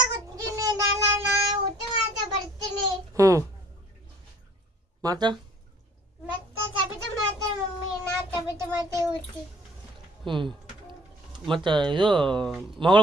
ಹ್ಞೂ ಮತ್ತು ಹ್ಞೂ ಮತ್ತು ಇದು ಮಗಳು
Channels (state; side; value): normal; both; correlation 0.57